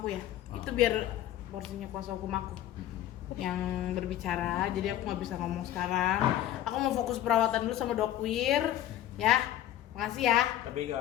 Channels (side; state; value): right; quieter; 12.5 dB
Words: ya. Itu biar porsinya kuasa hukum aku yang berbicara, jadi aku nggak bisa ngomong sekarang. Aku mau fokus perawatan dulu sama Dokwir, ya. Makasih ya. Tapi